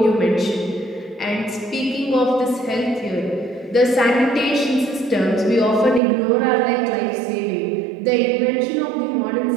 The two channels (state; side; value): drops out; left; at 6.0 s